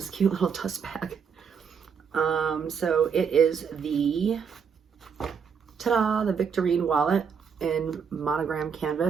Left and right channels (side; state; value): left; quieter; 6.7 dB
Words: cute little dust bag. So it is the, ta-da, the Victorine wallet in monogram